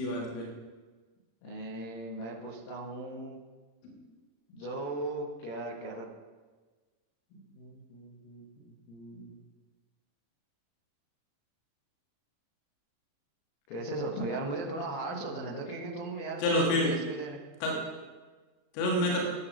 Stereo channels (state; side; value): late; right; 36 ms